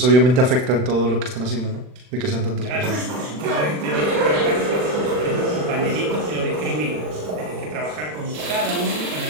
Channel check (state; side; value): late; left; 40 ms